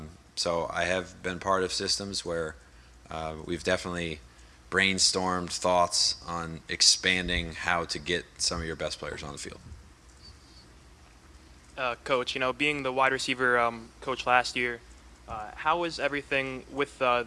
So I have been part of systems where we've definitely brainstormed thoughts on expanding how to get some of your best players on the field. Coach, being the wide receiver coach last year, How is everything with the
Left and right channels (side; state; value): both; identical; correlation 1.00